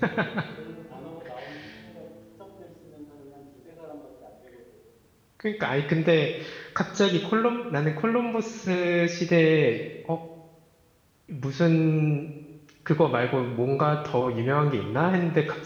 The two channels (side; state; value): both; identical; correlation 1.00